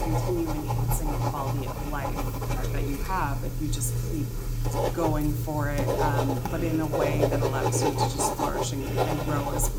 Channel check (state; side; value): identical; both; correlation 1.00